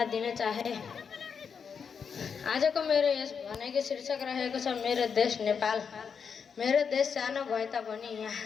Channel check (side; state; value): right; quieter; 6.4 dB